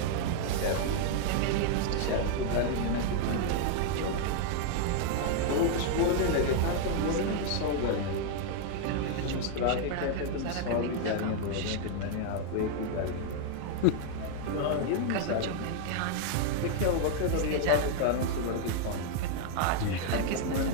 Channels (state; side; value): different; both; correlation 0.00